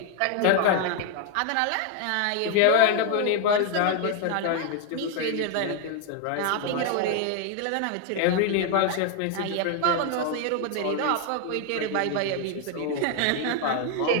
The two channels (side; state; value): both; different; correlation 0.00